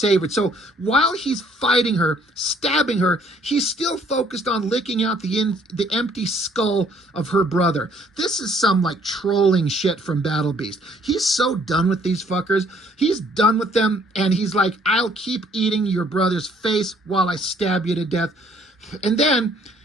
So while he's fighting her, stabbing her, he's still focused on licking out the empty skull of her brother. This is some, like, trolling shit from Battle Beast. He's so done with these fuckers. He's done with them, and he's like, I'll keep eating your brother's face while I stab you to death. And then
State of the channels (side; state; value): both; normal; correlation 0.62